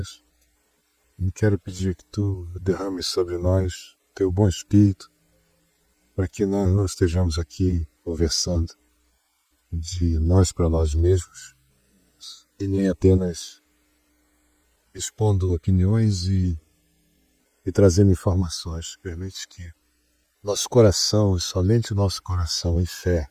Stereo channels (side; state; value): both; identical; correlation 1.00